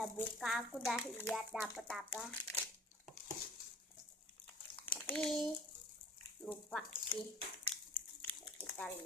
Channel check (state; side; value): normal; both; correlation 0.49